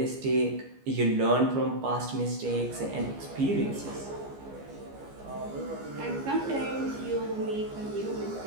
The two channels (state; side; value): late; left; 15 ms